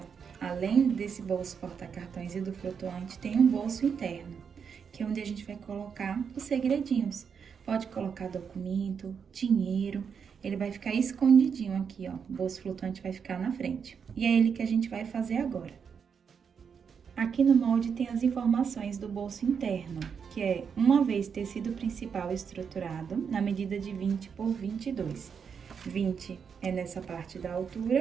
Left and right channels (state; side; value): quieter; left; 6.6 dB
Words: além desse bolso porta-cartões e do flutuante, tem um bolso interno, que é onde a gente vai colocar os segredinhos. Pode colocar documento, dinheiro, ele vai ficar escondidinho aqui, ó. O bolso flutuante vai ficar na frente. E é ele que a gente vai fazer agora. Aqui no molde tem as informações do bolso interno, que é uma vez tecido principal estruturado na medida de 20 por 22. 20 é nessa parte da